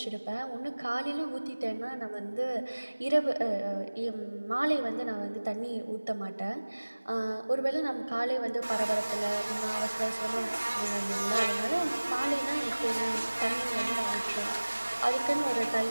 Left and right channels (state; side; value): inverted; both; correlation -1.00